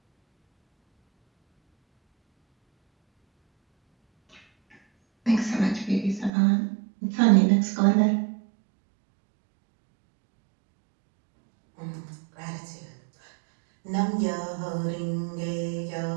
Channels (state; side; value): drops out; left; at 6.3 s